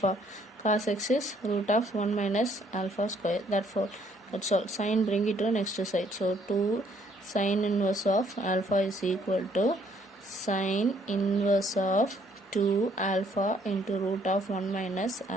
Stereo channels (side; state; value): both; normal; correlation 0.66